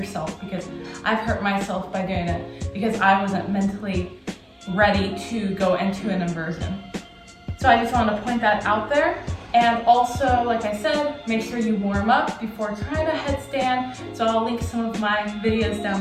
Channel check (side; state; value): both; identical; correlation 1.00